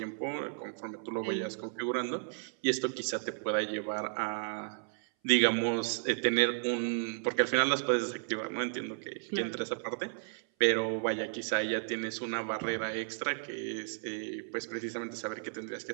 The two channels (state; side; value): silent; left; 55 dB below the other